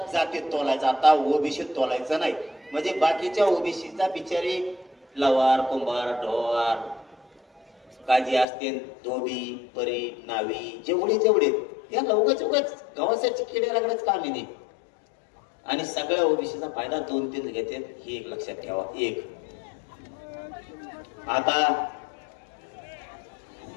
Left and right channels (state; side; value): drops out; right; at 8.5 s